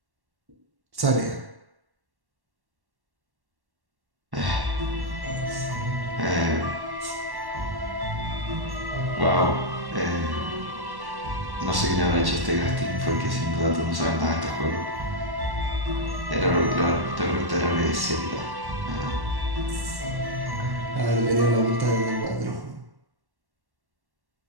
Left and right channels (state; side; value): late; left; 1.1 ms